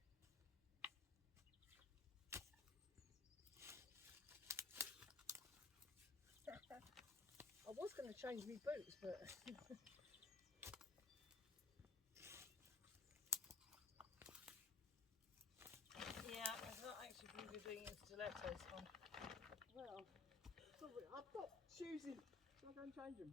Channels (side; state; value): right; quieter; 4.3 dB